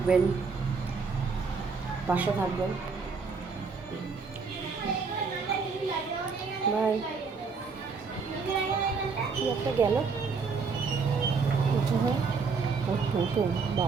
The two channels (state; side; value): quieter; left; 5.0 dB